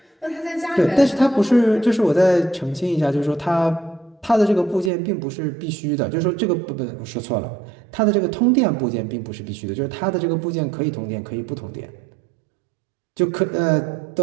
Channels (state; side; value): drops out; left; at 4.9 s